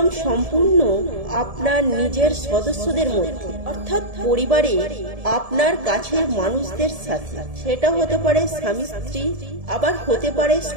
সম্পূর্ণ আপনার নিজের সদস্যদের মধ্যে, অর্থাৎ পরিবারে আপনার কাছের মানুষদের সাথে। সেটা হতে পারে স্বামী স্ত্রী, আবার হতে পারে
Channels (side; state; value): left; late; 1.7 ms